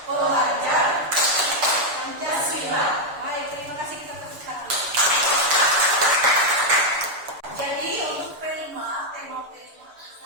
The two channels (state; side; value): late; left; 6.9 ms